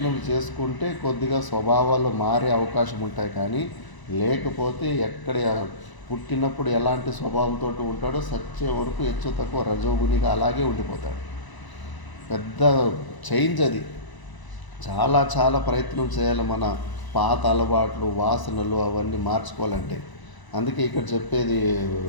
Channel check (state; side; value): late; right; 1.0 ms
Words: చేసుకుంటే కొద్దిగా స్వభావాలు మారే అవకాశం ఉంటాయి. కానీ లేకపోతే ఎక్కడ పుట్టినప్పుడు ఎలాంటి స్వభావంతో ఉంటాడో సచ్చే వరకు హెచ్చు తక్కువ రజోగుణిగా అలాగే ఉండిపోతాడు. పెద్ద చేంజ్ అది. చాలా చాలా ప్రయత్నం చేయాలి మన పాత అలవాట్లు, వాసనలు అవన్నీ మార్చుకోవాలంటే. అందుకే ఇక్కడ చెప్పేది